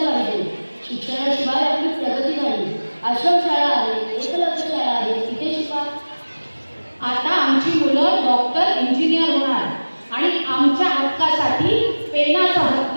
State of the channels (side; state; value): both; inverted; correlation -1.00